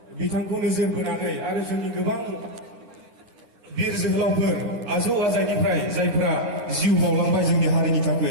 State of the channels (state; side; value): late; left; 9.9 ms